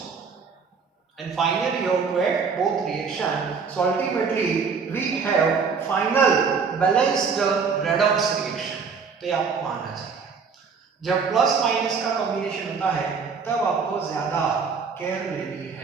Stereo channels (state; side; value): quieter; left; 5.5 dB